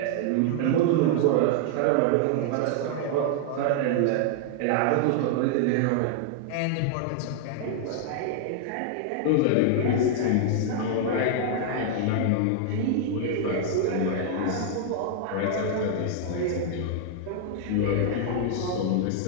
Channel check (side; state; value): both; different; correlation -0.01